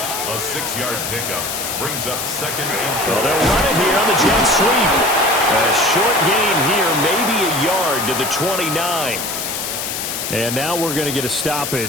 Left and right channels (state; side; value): noise; left; hiss, 4 dB below the sound